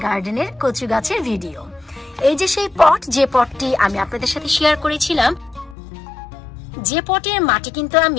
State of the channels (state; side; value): drops out; right; at 5.8 s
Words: গার্ডেনের কচু গাছের ভিডিও। এই যে সেই পট, যে পটটি আমি আপনাদের সাথে শেয়ার করেছিলাম, যে পটের মাটি কিন্তু